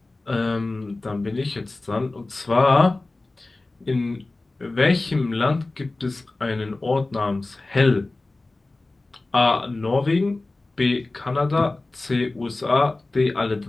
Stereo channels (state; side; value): quieter; right; 3.1 dB